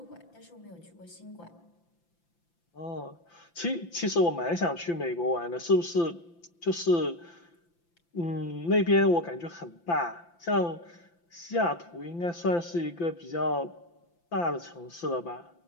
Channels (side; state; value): right; late; 5.9 ms